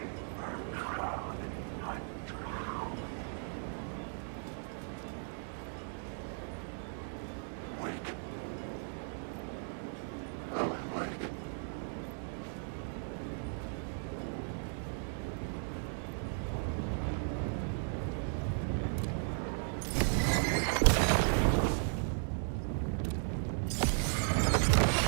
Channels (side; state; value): left; silent; 54 dB below the other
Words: Wake. Alan Wake.